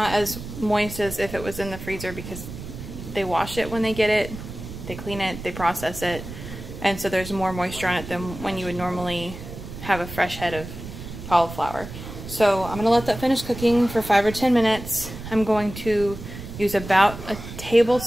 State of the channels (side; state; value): right; noise; rumble, 11 dB below the sound